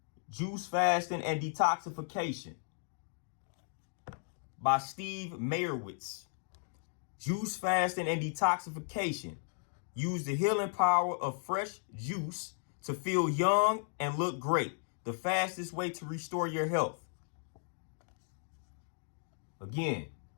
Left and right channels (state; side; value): silent; right; digital silence